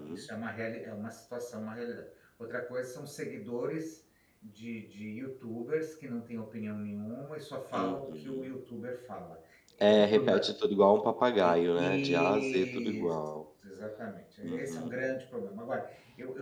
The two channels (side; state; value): both; identical; correlation 1.00